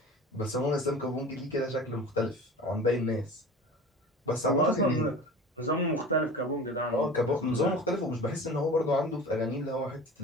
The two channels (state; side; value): normal; both; correlation 0.37